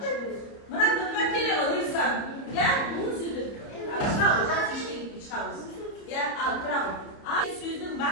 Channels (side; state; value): right; late; 30 ms